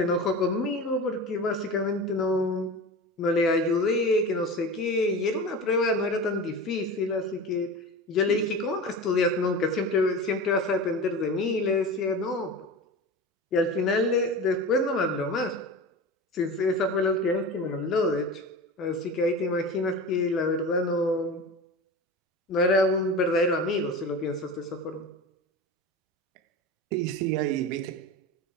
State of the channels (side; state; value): both; normal; correlation 0.30